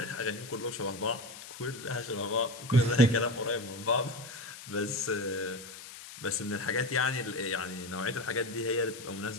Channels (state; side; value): noise; left; hiss, 14 dB below the sound